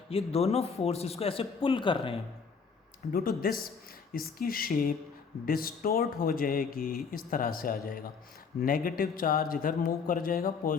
ये दोनों फोर्स इसको ऐसे पुल कर रहे हैं। ड्यू टू दिस इसकी शेप डिस्टोर्ट हो जाएगी, इस तरह से आ जाएगा। नेगेटिव चार्ज इधर मूव कर जाएगा,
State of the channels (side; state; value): right; quieter; 5.6 dB